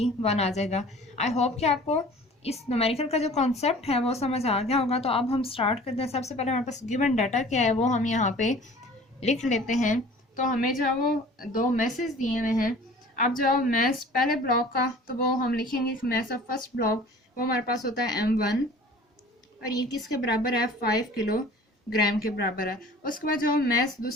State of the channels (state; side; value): normal; both; correlation 0.46